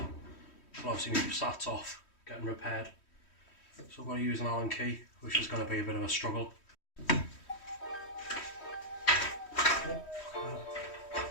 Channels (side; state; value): right; late; 3.1 ms